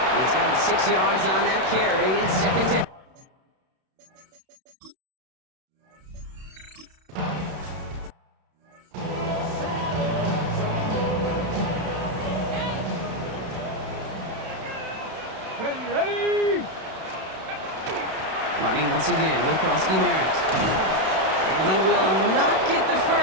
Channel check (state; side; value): late; left; 32 ms